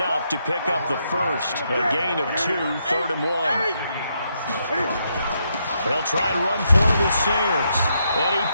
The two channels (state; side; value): inverted; both; correlation -0.78